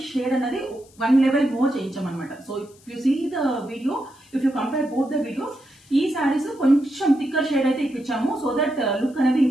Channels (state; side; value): noise; left; hiss, 28 dB below the sound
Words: షేడ్ అనేది 1 లెవెల్ మోర్ చేయించామన్నమాట. So if you see the video, if you compare both the videos, ఈ సారీస్ కొంచెం థిక్కర్ షేడ్ అయితే ఇప్పించాము, సో దట్ లుక్ అనేది